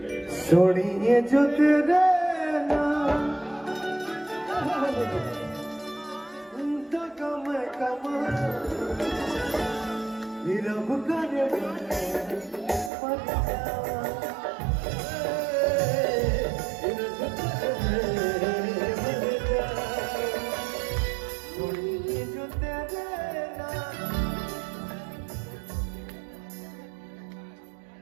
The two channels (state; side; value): drops out; left; at 12.9 s